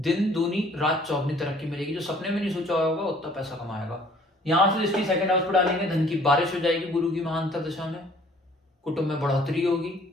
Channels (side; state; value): both; normal; correlation 0.56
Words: दूनी रात चौगनी तरक्की मिलेगी। जो सपने में नहीं सोचा होगा उतना पैसा कमाएगा। यहां से दृष्टि 2nd हाउस पर डालेंगे, धन की बारिश हो जाएगी गुरु की महाअंतर दशा में, कुटुंब में बढ़ोतरी होगी,